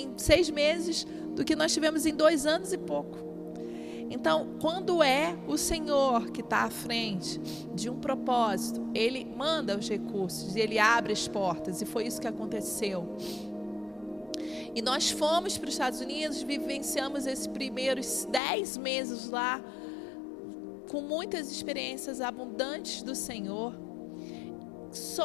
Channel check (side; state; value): right; drops out; at 18.4 s